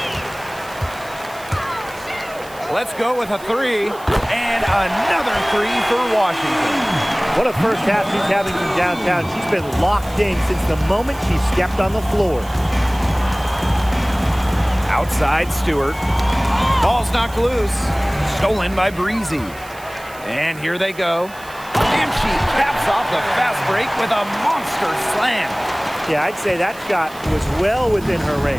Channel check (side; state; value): right; noise; hiss, 20 dB below the sound